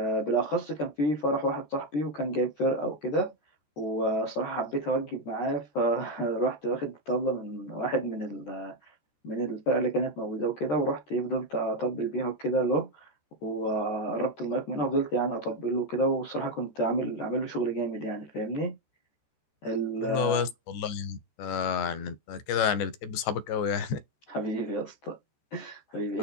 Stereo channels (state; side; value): late; right; 14 ms